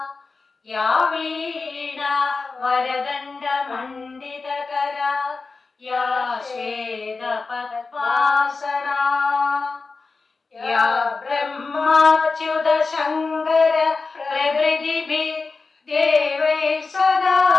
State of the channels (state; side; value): quieter; right; 4.1 dB